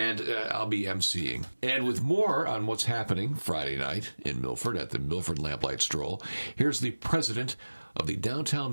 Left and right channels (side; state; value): both; inverted; correlation -1.00